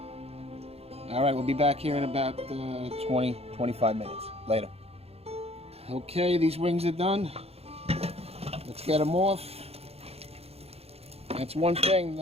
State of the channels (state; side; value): late; left; 0.29 ms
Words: All right, we'll be back here in about 20, 25 minutes later. Okay, these wings are done. Let's get them off. That's one thing,